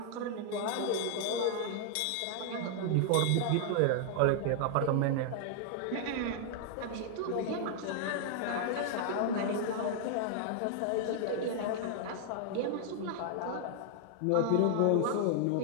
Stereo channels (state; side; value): different; both; correlation 0.00